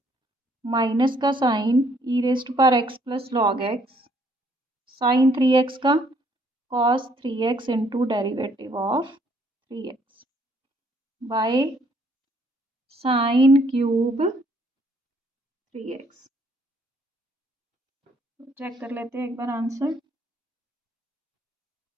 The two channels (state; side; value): normal; both; correlation 0.66